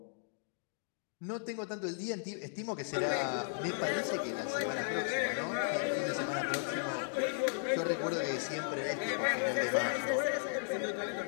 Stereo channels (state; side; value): silent; right; digital silence